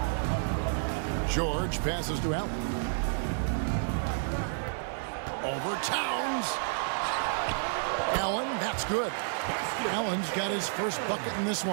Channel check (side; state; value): left; silent; digital silence